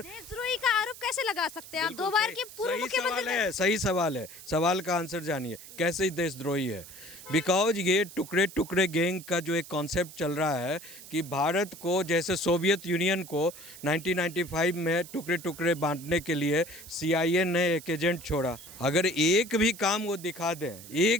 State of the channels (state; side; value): noise; right; hiss, 16 dB below the sound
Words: का आरोप कैसे लगा सकते हैं आप? दो बार के पूर्व मुख्यमंत्री है, सही सवाल है। सवाल का आंसर जानिए, कैसे ही देशद्रोही है। बिकॉज ये टुकड़े टुकड़े गैंग का जो एक कॉन्सेप्ट चल रहा है कि भारत को, जैसे सोवियत यूनियन को 1995 में टुकड़े टुकड़े बांटने के लिए CIA ने एक एजेंट छोड़ा। अगर एक भी काम वो दिखा दें,